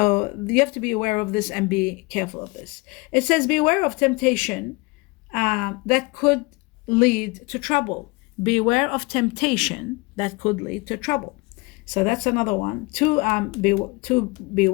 you have to be aware of this and be careful of this. It says, beware of temptation that could lead to trouble. Beware of temptation that could lead to trouble. So that's another one. Two,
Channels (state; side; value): quieter; right; 26.0 dB